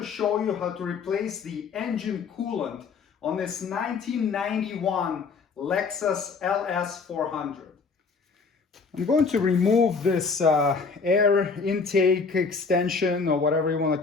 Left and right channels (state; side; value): quieter; right; 4.9 dB